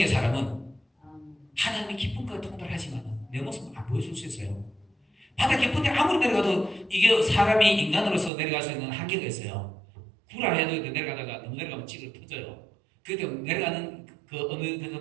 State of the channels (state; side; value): drops out; left; at 8.3 s